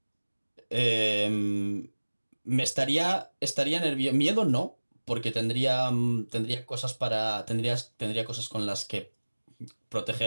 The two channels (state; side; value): inverted; both; correlation -1.00